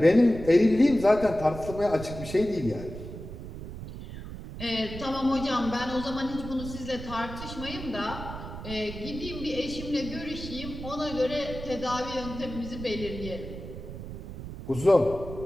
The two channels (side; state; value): right; noise; rumble, 10 dB below the sound